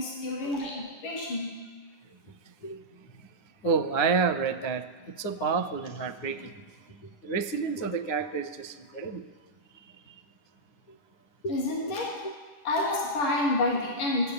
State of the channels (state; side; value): late; right; 9.7 ms